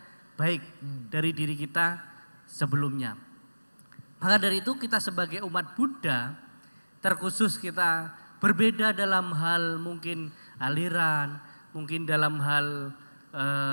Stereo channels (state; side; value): inverted; both; correlation -1.00